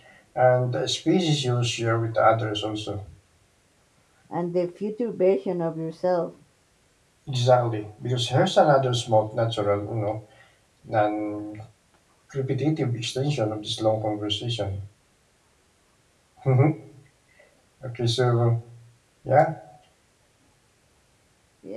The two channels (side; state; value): both; identical; correlation 1.00